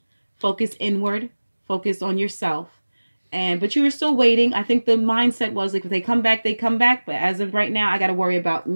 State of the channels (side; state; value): both; inverted; correlation -1.00